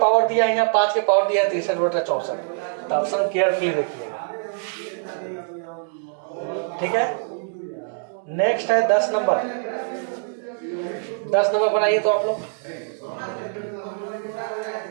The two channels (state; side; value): silent; left; digital silence